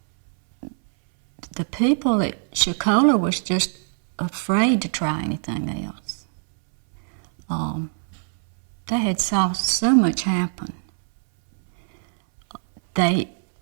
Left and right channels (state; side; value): silent; left; 64 dB below the other